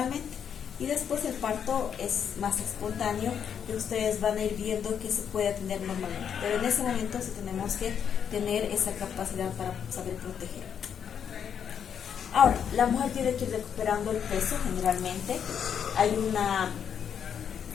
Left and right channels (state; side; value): quieter; right; 8.0 dB